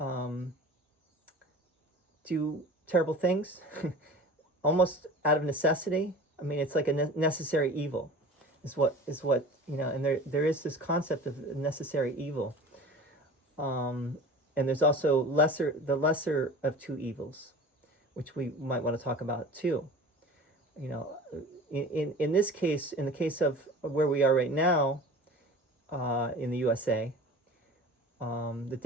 do terrible things, almost out of necessity. I mean, it's like a necessary evil, is what and there is this concept of necessary evil. And there's also the lesser of two evils, which we might want to talk about too. In this case, in the case of where we are right now, in the USA, the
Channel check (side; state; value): both; normal; correlation 0.39